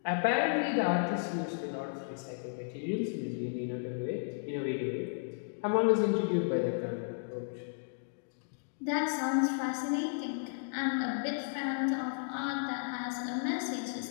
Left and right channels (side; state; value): right; silent; digital silence